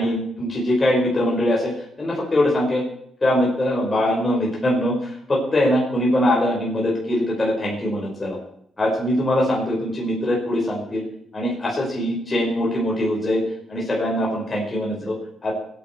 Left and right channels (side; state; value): both; normal; correlation 0.78